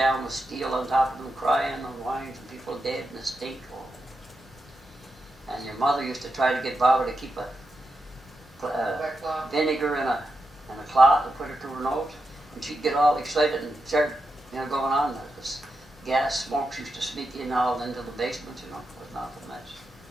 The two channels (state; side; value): normal; both; correlation 0.87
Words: down with steel on top of them, crying and whining, and people dead in the stink. And your mother used to try to get Baba to keep a vinegar in a cloth and put it to her nose. And she'd get all excited and start, going on. This gas smokes used to sneak in all into the basement, It was not a mess.